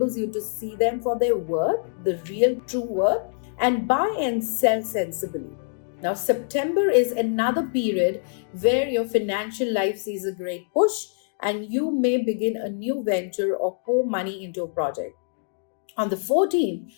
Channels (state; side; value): silent; right; 62 dB below the other